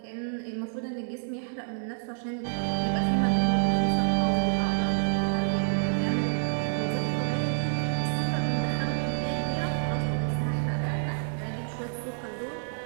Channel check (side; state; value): left; silent; digital silence